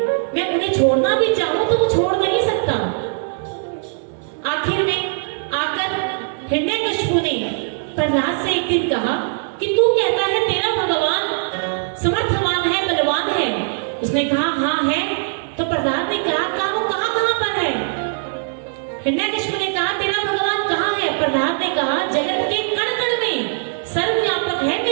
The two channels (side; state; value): left; silent; digital silence